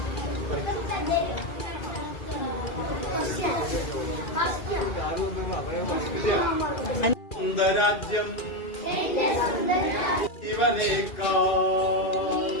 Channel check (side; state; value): right; late; 2.4 ms